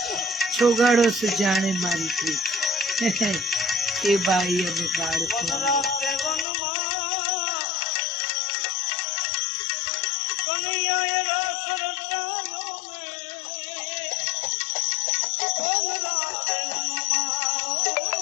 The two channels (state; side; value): drops out; right; at 6.5 s